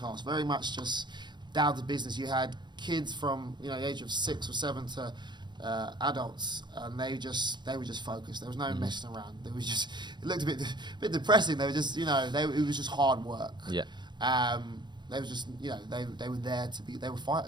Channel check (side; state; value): left; late; 0.21 ms